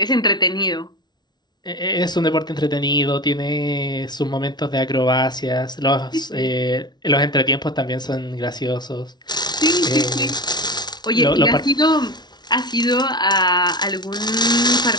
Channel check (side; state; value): right; late; 0.20 ms